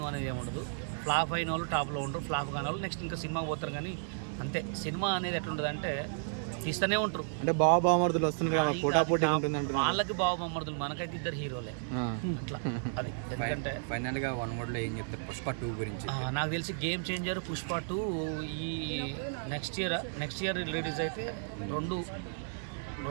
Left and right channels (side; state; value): left; silent; 56 dB below the other